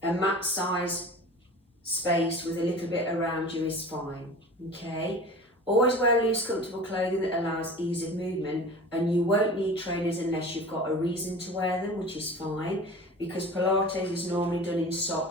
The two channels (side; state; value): both; normal; correlation 0.37